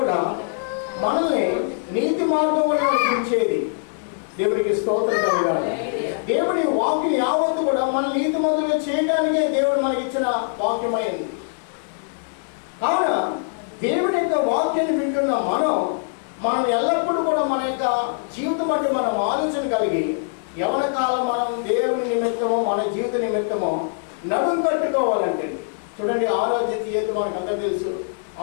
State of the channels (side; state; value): right; silent; 62 dB below the other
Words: మనల్ని నీతి మార్గంలో నడిపించేది. దేవుడికి స్తోత్రం కలగాలి. దేవుడి వాక్యం యావత్తు కూడా మన నీతి మంతులుగా చేయడానికే దేవుడు మనకి ఇచ్చిన వాక్యమైంది. కావున దేవుని యొక్క వాక్యాన్ని వింటున్న మనం మనం ఎల్లప్పుడూ కూడా మన యొక్క జీవితం బట్టి మనం ఆలోచన కలిగి యవన కాలం మనం దేవుని నిమిత్తమో మన జీవిత నిమిత్తమో నడుం కట్టుకోవాలంటే చూడండి, ఆరోగ్య తీయత మనకు అందరూ తెలుసు.